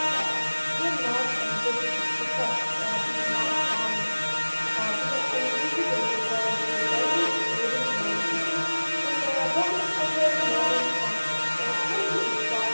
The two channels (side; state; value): both; inverted; correlation -1.00